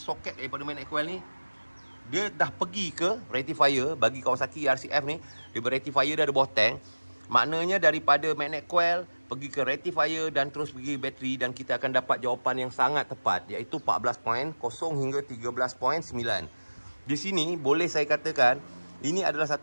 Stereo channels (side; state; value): both; inverted; correlation -1.00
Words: daripada magnet coil ni dia dah pergi ke rectifier. Bagi Kawasaki RCF ni, dia rectifier dia ada bawah tank. Maknanya daripada magnet coil pergi ke rectifier dan terus pergi bateri, dan kita akan dapat jawapan yang sangat tepat, iaitu 14.0 hingga 13.9. Di sini boleh saya katakan ini adalah